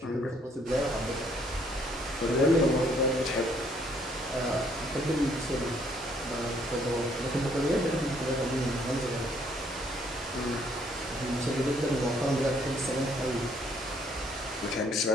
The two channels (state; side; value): normal; both; correlation 0.66